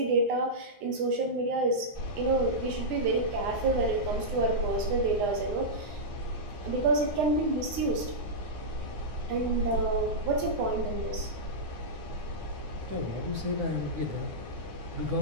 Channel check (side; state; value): left; late; 9.7 ms